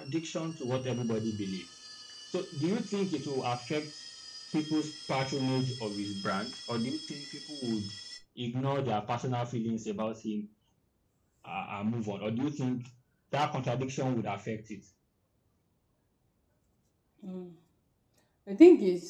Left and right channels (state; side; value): identical; both; correlation 1.00